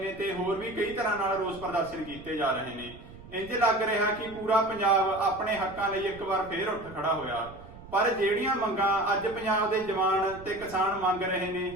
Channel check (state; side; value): noise; right; rumble, 18 dB below the sound